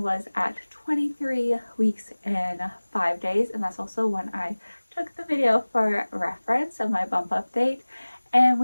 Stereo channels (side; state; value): both; inverted; correlation -1.00